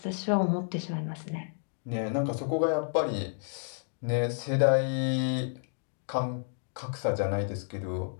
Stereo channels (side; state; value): right; silent; digital silence